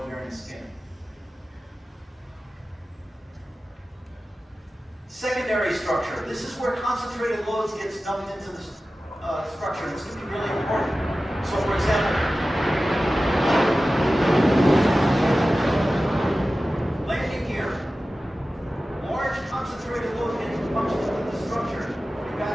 skin. Secondary structure. This is where concentrated loads gets dumped into the structure. This can be really important. So, for example, landing gear. Large concentrated load getting punched into the structure. You've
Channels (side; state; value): both; normal; correlation 0.95